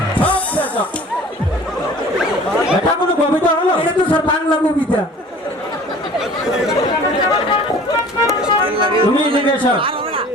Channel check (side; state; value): both; normal; correlation 0.46